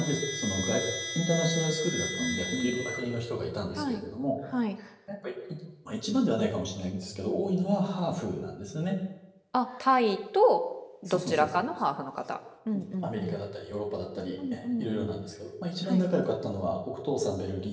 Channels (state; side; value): identical; both; correlation 1.00